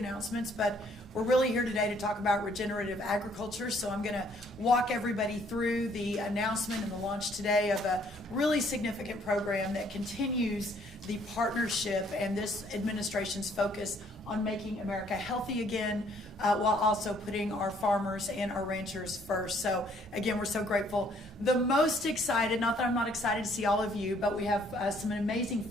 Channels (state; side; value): normal; both; correlation 0.64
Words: but we're really here today to talk about regenerative agriculture. So I'm going to walk everybody through the announcement and the launch today of a really significant program that continues the partnership and this administration's focus on making America healthy again, while also putting our farmers and our ranchers first. So again, we're so grateful. The most excited, not that I'm not excited to see all of you, but we have some amazing